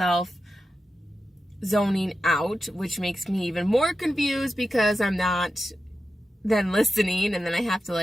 zoning out, which makes me even more confused because I'm not then listening, and then I have to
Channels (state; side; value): normal; both; correlation 0.91